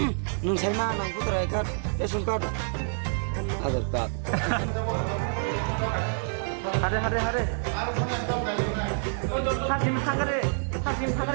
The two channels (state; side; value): silent; left; digital silence